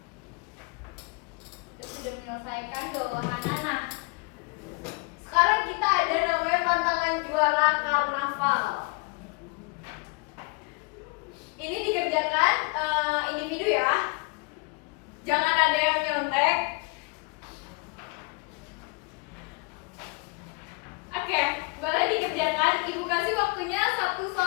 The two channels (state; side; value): quieter; right; 29.7 dB